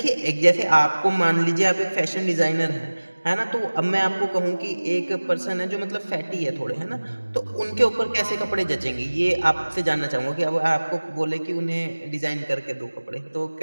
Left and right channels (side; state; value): both; inverted; correlation -1.00